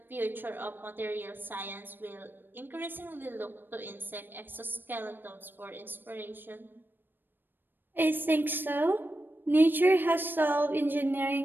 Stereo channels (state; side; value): late; left; 0.095 ms